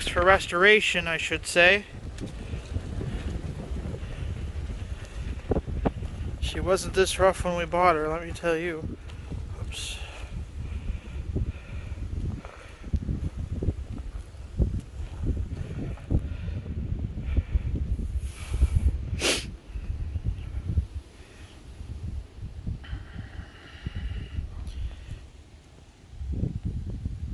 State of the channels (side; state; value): both; identical; correlation 1.00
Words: for restoration, I should say. She wasn't this rough when we bought her, let me tell you. Oops.